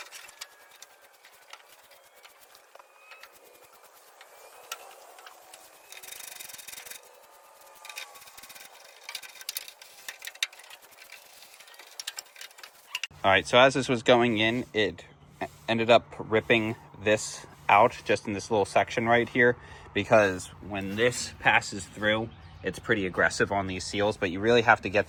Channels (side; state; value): both; identical; correlation 1.00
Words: All right, so as this was going in, it ended up ripping this out just in this little section right here, because when this passes through, it's pretty aggressive on these seals, but you really have to get